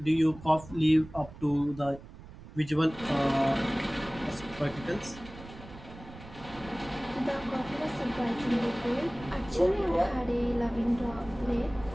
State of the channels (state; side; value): noise; right; rumble, 17 dB below the sound